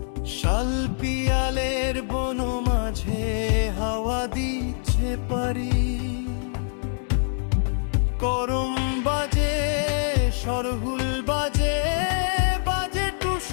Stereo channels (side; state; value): right; silent; digital silence